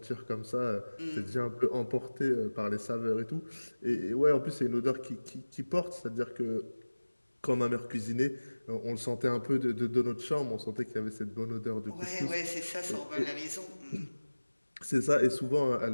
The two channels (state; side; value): inverted; both; correlation -1.00